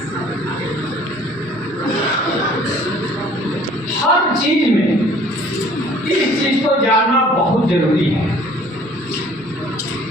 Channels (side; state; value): right; noise; rumble, 29 dB below the sound